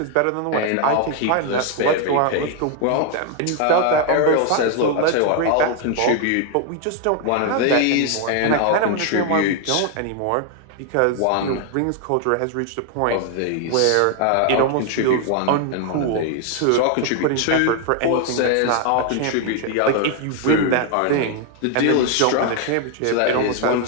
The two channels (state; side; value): different; both; correlation 0.00